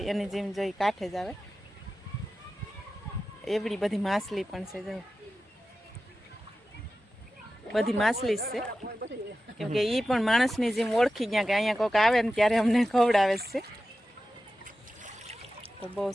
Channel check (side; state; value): both; normal; correlation 0.93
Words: એની જેમ જોઈ કાંઠે જ આવે. એવડી બધી માછલી પણ છે, જો બધી માછલી જ છે, કેમ કે એ પણ માણસની જેમ ઓળખી ગયા કે અહીંયા કોઈક આવે ને ત્યારે અમને ખવડાવે છે. તો બહુ